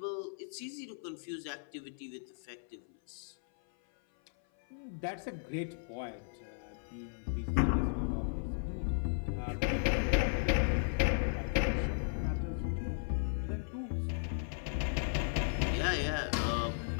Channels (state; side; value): silent; right; 54 dB below the other